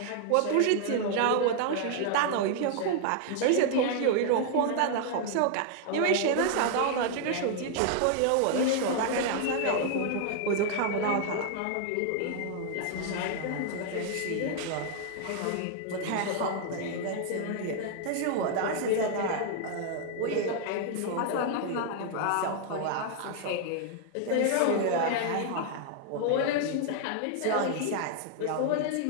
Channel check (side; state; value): both; different; correlation 0.00